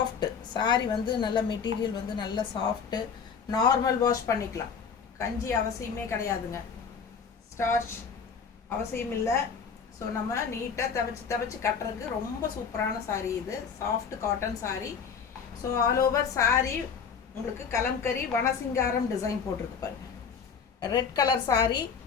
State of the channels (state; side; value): quieter; right; 6.3 dB